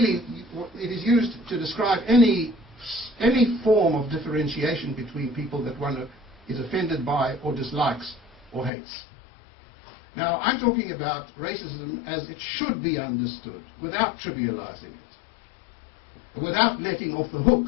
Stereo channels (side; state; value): right; drops out; at 8.7 s